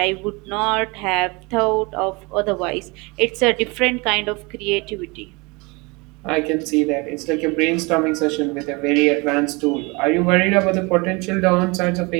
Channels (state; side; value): quieter; left; 27.4 dB